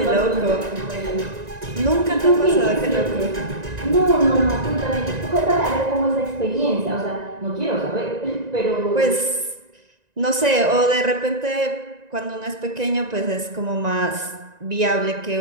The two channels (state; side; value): late; left; 1.9 ms